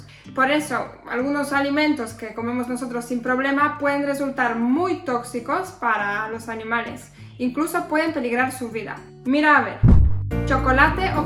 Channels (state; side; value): identical; both; correlation 1.00